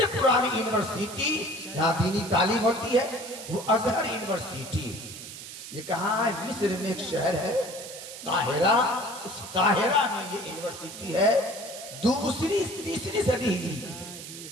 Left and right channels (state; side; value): noise; right; hiss, 12 dB below the sound